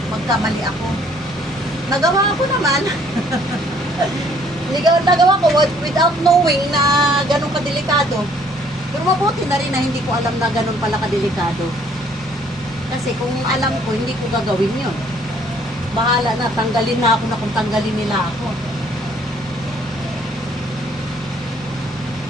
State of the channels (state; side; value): normal; both; correlation 0.61